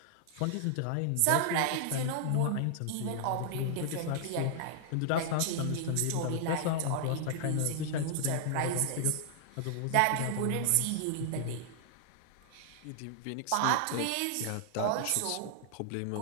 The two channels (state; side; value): different; both; correlation -0.01